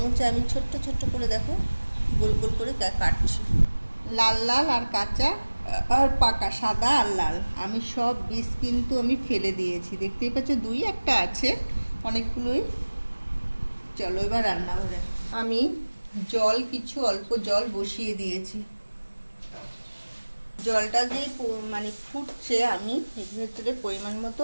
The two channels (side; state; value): both; inverted; correlation -1.00